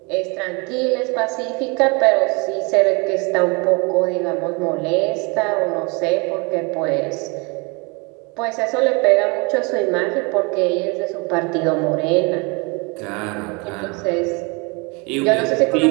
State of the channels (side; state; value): left; quieter; 29.6 dB